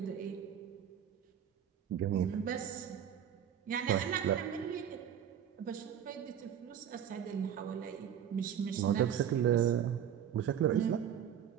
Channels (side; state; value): left; quieter; 9.2 dB